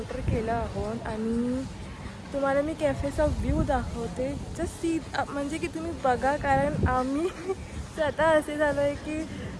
केलं आहोत आणि तुम्हाला मी कॅफेचा व्ह्यू दाखवते. जस्ट सी म्हणजे की तुम्ही बघा कारण आम्ही स्वतः असे झालो आहे की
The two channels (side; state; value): both; identical; correlation 1.00